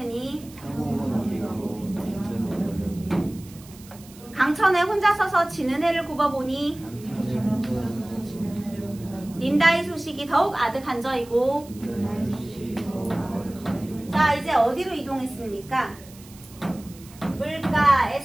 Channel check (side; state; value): right; noise; hiss, 21 dB below the sound